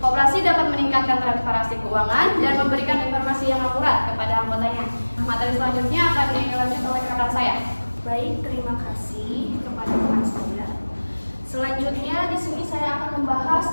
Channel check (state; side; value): inverted; both; correlation -1.00